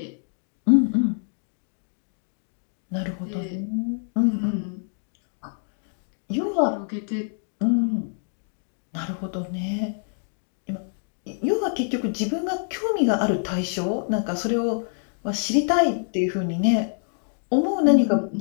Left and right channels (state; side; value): silent; right; digital silence